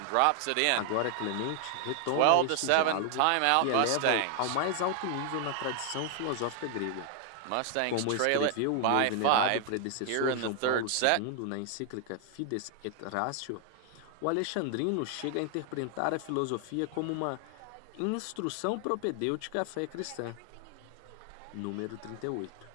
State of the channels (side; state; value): both; different; correlation 0.00